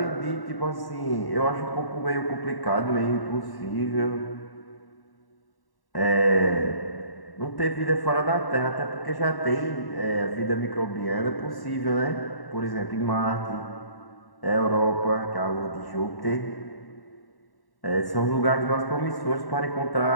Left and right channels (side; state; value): right; late; 1.1 ms